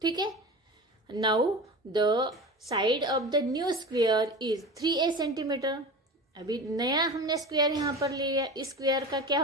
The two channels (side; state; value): both; normal; correlation 0.32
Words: ठीक है, now the side of the new square is 3a centimetre. अभी नया हमने स्क्वायर यहाँ पर ले लिया, इस स्क्वायर का क्या